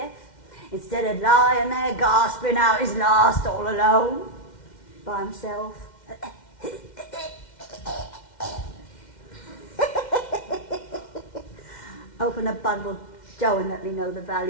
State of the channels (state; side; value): late; right; 2.1 ms